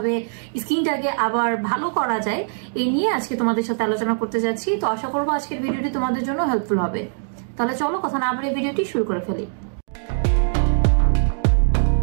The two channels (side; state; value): left; silent; digital silence